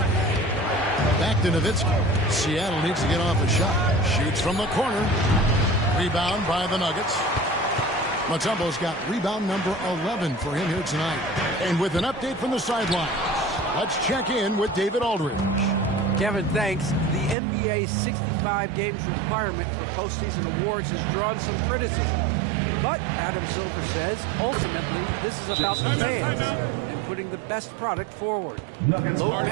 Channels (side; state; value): left; drops out; at 17.4 s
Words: Back to Nowitzki. Seattle needs to get off a shot. Shoots from the corner. Rebound by the Nuggets. Mutombo's got rebound number 11 for him here tonight. And with an update from the sidelines, let's check in with David Aldridge. Kevin, thanks. The NBA 65 games requirement for postseason awards has drawn some criticism. But Adam Silver says, ultimately, this is about the fans and putting the best product forward. Load